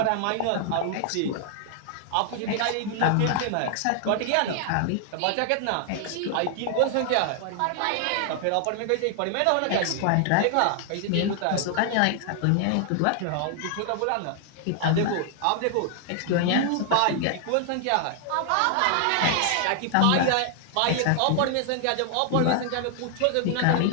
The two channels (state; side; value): different; both; correlation 0.00